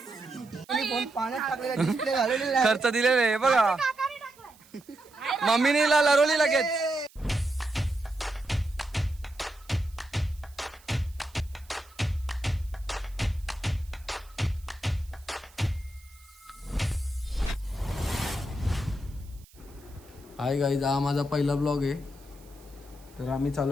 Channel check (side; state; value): right; noise; hiss, 26 dB below the sound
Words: पाण्यात टाकलेला डिस्प्ले घालवलेला खर्च दिलेले आहे बघा. मम्मीने लरवली लगेच. हाय गाईज, हा माझा पहिला ब्लॉग आहे. तर आम्ही